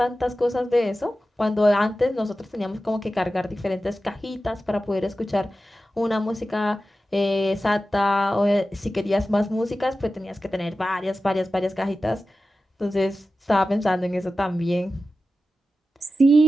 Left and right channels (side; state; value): both; normal; correlation 0.94